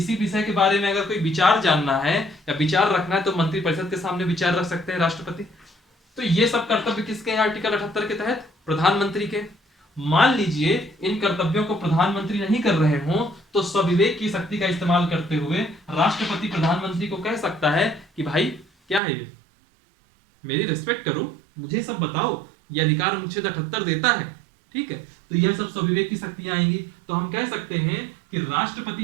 विषय के बारे में अगर कोई विचार जानना है या विचार रखना है तो मंत्रिपरिषद के सामने विचार रख सकते हैं राष्ट्रपति। तो ये सब कर्तव्य किसके हैं आर्टिकल 78 के तहत? प्रधानमंत्री के। मान लीजिए इन कर्तव्यों को प्रधानमंत्री नहीं कर रहे हो, तो स्वविवेक की शक्ति का इस्तेमाल करते हुए राष्ट्रपति प्रधानमंत्री को कह सकता है कि भाई क्या है ये, मेरी रिस्पेक्ट करो, मुझे सब बताओ, ये अधिकार अनुच्छेद 78 देता है। ठीक है, तो यह सब स्वविवेक की शक्तियां आएंगी। तो हम कह सकते हैं कि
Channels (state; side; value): drops out; left; at 19.0 s